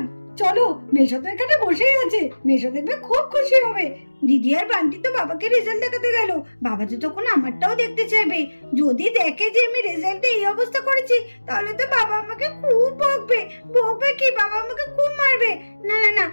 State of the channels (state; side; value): inverted; both; correlation -1.00